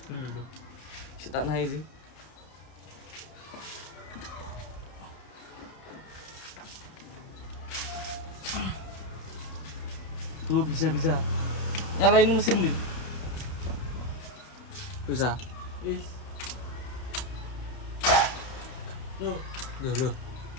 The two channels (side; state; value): right; late; 31 ms